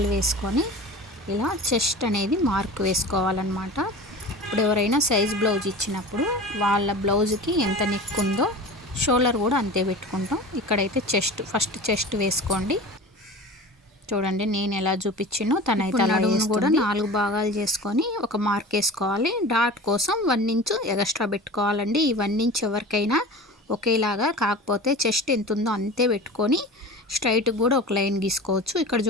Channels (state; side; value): normal; both; correlation 0.35